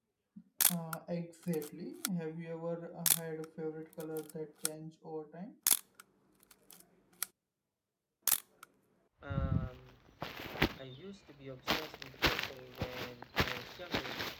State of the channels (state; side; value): identical; both; correlation 1.00